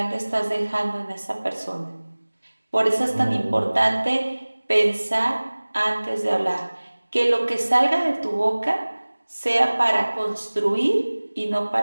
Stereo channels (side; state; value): both; inverted; correlation -1.00